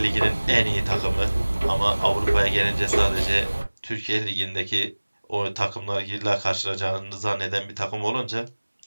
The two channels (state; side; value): inverted; both; correlation -1.00